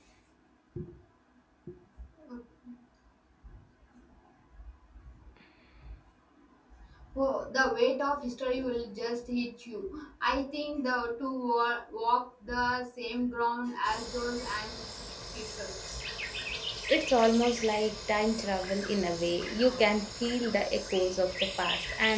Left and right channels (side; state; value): both; identical; correlation 1.00